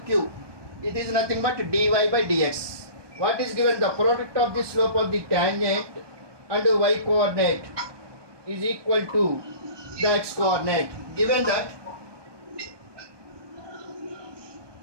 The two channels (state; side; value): late; left; 1.2 ms